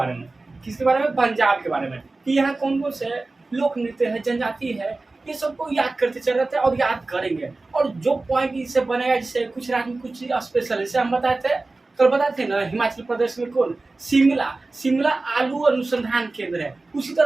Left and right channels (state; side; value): quieter; left; 3.3 dB